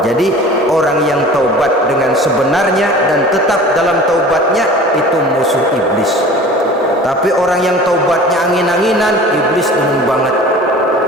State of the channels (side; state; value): both; normal; correlation 0.42